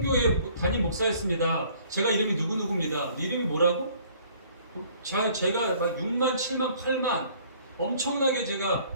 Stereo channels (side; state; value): both; inverted; correlation -0.57